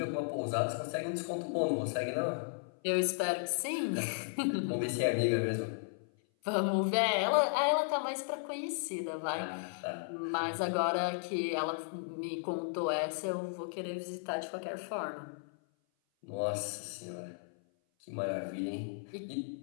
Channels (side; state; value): right; silent; 54 dB below the other